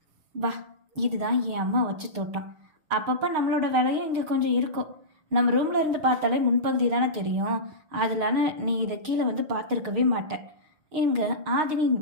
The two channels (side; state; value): left; late; 6.5 ms